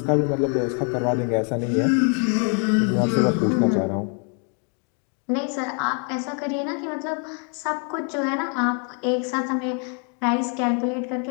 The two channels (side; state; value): right; quieter; 39.8 dB